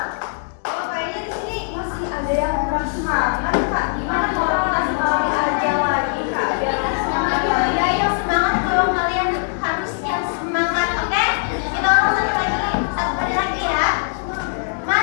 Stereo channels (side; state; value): right; silent; digital silence